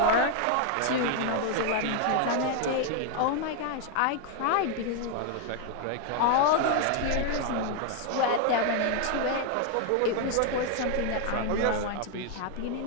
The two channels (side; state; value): both; different; correlation 0.00